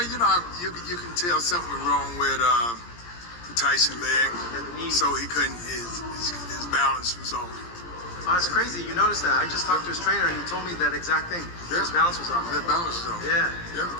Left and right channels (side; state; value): right; late; 17 ms